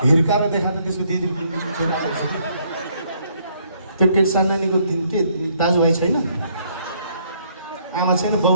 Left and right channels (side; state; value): both; inverted; correlation -0.68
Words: हिर्काएर देखा त त्यसको दिदी त्यो के सन्नानीको के दाजुभाइ छैन, आमा छैन,